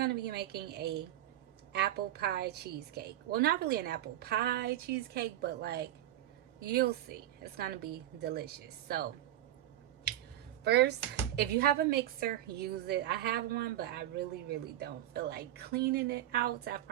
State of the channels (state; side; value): quieter; left; 13.2 dB